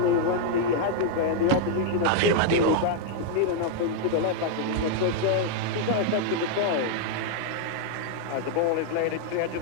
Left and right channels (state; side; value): different; both; correlation 0.00